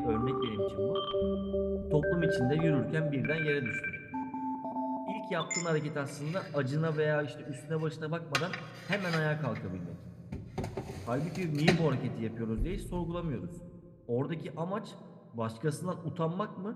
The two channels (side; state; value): both; identical; correlation 1.00